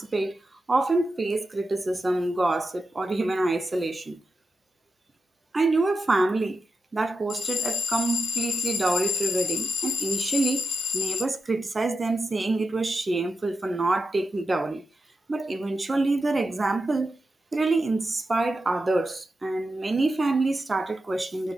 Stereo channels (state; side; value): normal; both; correlation 0.89